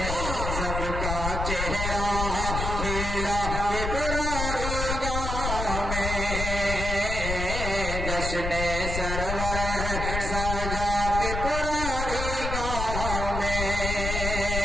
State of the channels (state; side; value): noise; left; rumble, 3 dB below the sound